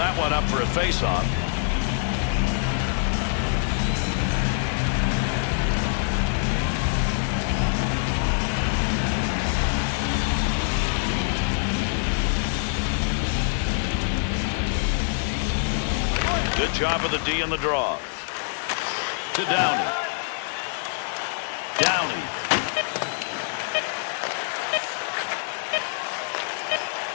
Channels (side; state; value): right; silent; digital silence